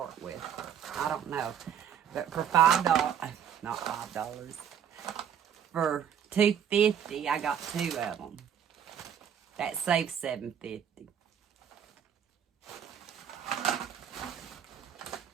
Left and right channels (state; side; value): quieter; left; 8.8 dB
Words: with. I don't know. But for $5, not $5, for $2.50, I got 2 of them. That saves $7.50.